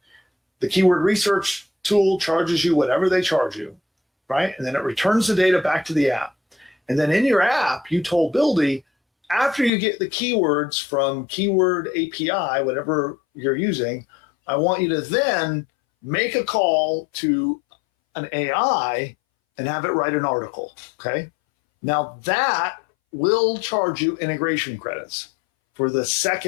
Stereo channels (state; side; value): drops out; right; at 9.7 s